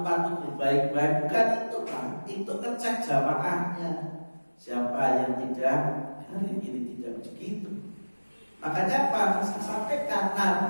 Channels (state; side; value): inverted; both; correlation -1.00